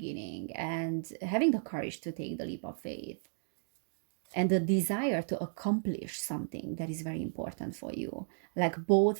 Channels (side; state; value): left; silent; digital silence